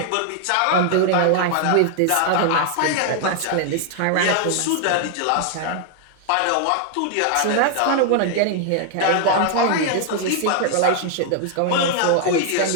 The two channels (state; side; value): different; both; correlation 0.00